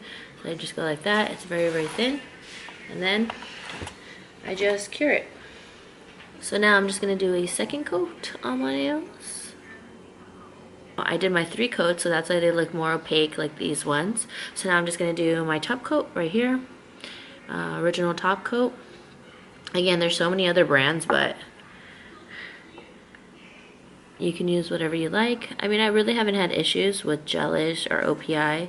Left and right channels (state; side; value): identical; both; correlation 1.00